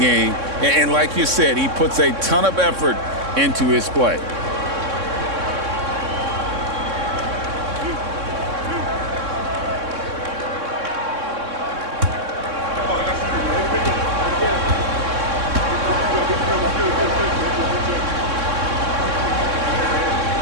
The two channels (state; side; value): late; left; 3.6 ms